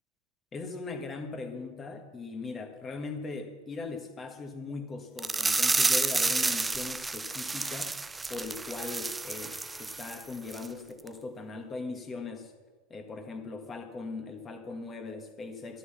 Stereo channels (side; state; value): both; normal; correlation 0.87